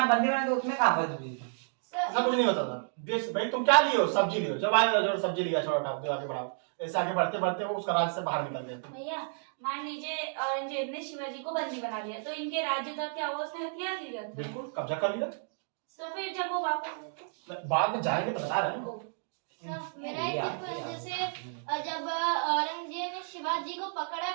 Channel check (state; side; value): silent; left; digital silence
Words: बंदी बना तो उसमें कहाँ बच गई? ऐसा कुछ नहीं होता था। बेच भाई तुम क्या लिए हो? सब्जी लिए हो, जब आए जो सब्जी लिया, छोड़ा उठाओ आगे बढ़ाओ, ऐसे आगे बढ़ते बढ़ते वो उसका राज्य से बाहर निकल गए। भैया मान लीजिए औरंगजेब ने शिवाजी को बंदी बना लिया, तो इनके राज्य तक क्या वो उसने हथियार लिया था? बिल्कुल कब्जा कर लिया। तो फिर जब वो वापस बाद में जाएंगे तो बता रहे हैं। मेरा एक क्वेश्चन, जैसे जब औरंगजेब ने शिवाजी को पकड़ा